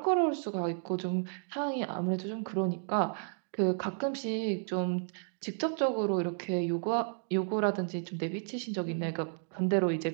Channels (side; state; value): left; silent; digital silence